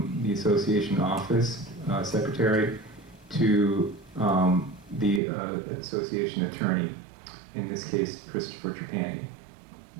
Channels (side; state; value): left; drops out; at 5.2 s